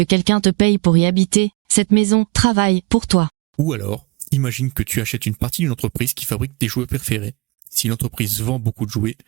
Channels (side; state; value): left; quieter; 24.7 dB